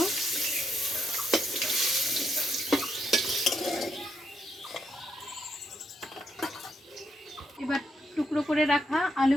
এবার টুকরো করে রাখা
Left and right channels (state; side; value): normal; both; correlation 0.78